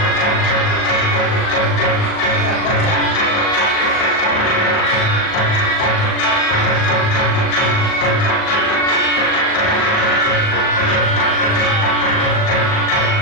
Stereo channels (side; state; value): right; late; 38 ms